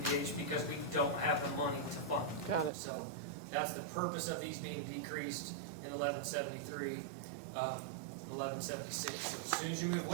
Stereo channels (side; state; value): left; drops out; at 2.7 s